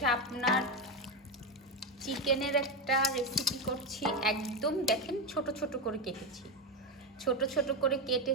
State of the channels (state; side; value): normal; both; correlation 0.11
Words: আপনার চিকেনের একটা রেসিপি করছি। একদম দেখেন ছোট ছোট করে কেটেছি, ছোট ছোট করে